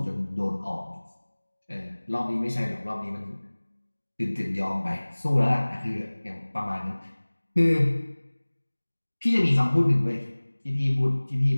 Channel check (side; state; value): both; inverted; correlation -1.00